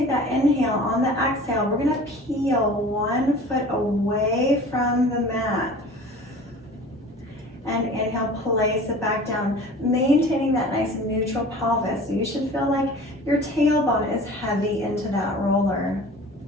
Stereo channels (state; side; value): normal; both; correlation 0.42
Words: that inhale. On the exhale, we're gonna peel 1 foot away from the mat. And inhale, place it back down, maintaining that nice neutral pelvis. So you should feel like your tailbone is heavy into that roller.